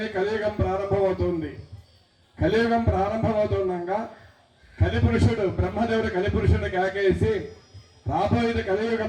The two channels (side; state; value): both; identical; correlation 1.00